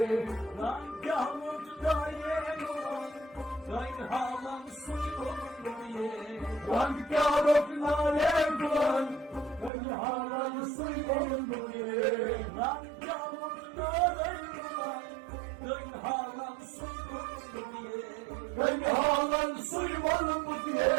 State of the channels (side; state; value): left; drops out; at 9.7 s